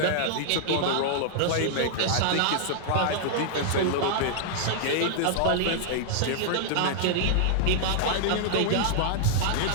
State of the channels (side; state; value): both; different; correlation -0.01